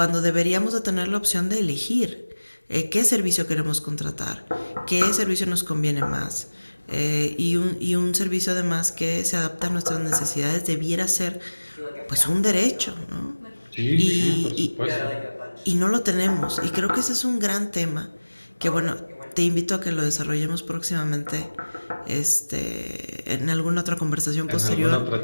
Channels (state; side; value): inverted; both; correlation -1.00